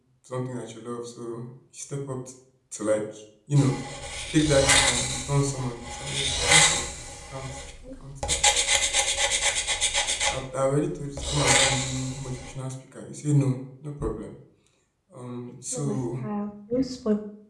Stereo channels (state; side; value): identical; both; correlation 1.00